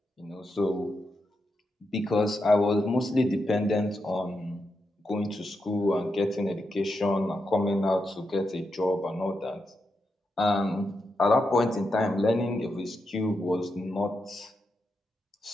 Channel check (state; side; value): normal; both; correlation 0.85